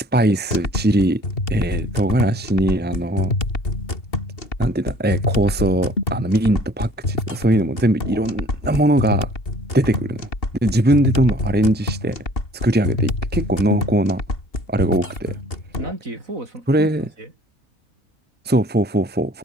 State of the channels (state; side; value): normal; both; correlation 0.54